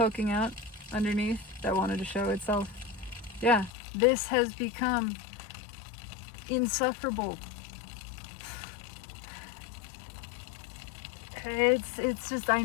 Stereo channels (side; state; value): right; drops out; at 3.7 s